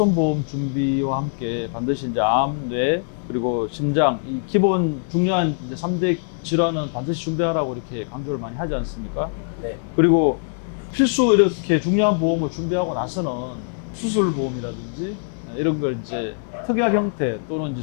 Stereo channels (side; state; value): right; silent; 64 dB below the other